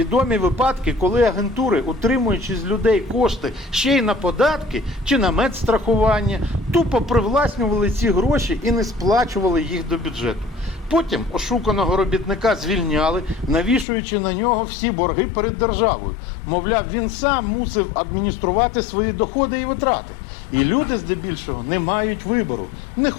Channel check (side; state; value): right; drops out; at 13.9 s